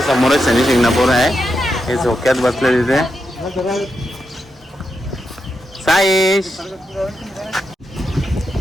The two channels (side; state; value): both; normal; correlation 0.85